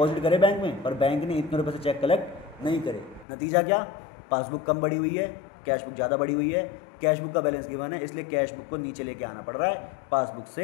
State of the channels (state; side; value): drops out; right; at 3.2 s